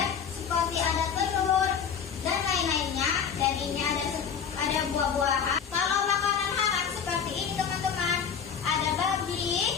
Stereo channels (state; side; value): quieter; right; 7.2 dB